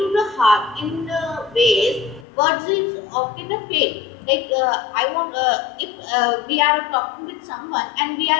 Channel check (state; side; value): drops out; right; at 2.2 s